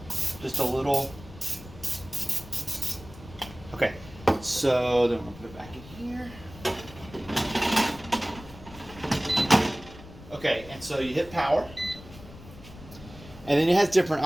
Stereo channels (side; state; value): left; noise; rumble, 18 dB below the sound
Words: Just a little. Okay. So then we'll put it back in here. Okay, and so you hit power. And then it has different